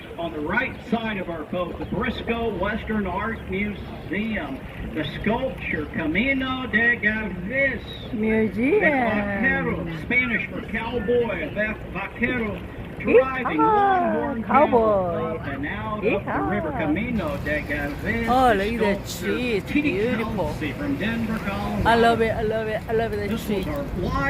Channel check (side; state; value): both; identical; correlation 1.00